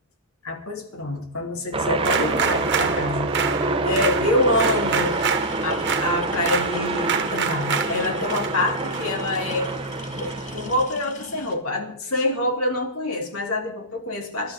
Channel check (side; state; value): both; normal; correlation -0.11